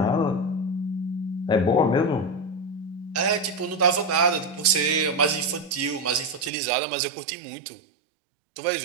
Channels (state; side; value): drops out; left; at 6.5 s